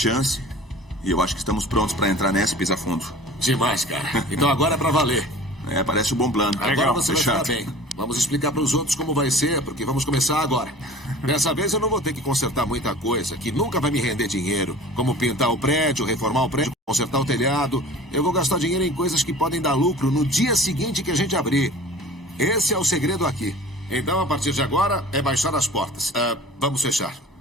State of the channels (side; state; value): both; normal; correlation 0.43